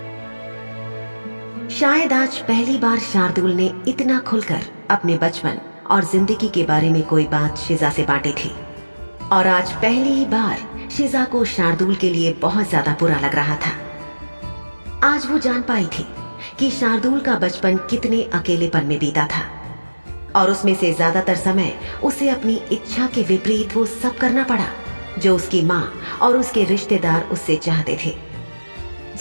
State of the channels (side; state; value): both; inverted; correlation -1.00